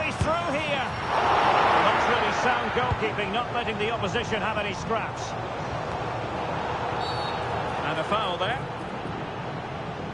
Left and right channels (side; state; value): right; noise; rumble, 27 dB below the sound